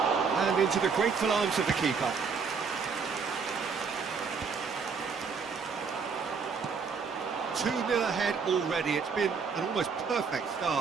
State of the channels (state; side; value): quieter; left; 5.5 dB